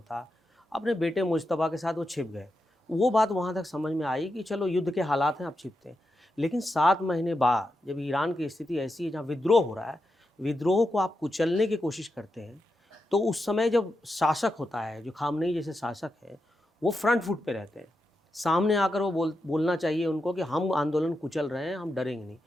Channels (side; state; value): both; normal; correlation 0.87